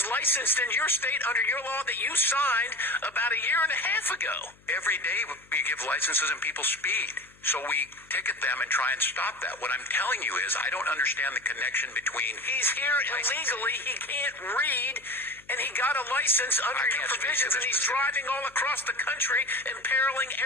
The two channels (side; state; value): left; noise; hum, 28 dB below the sound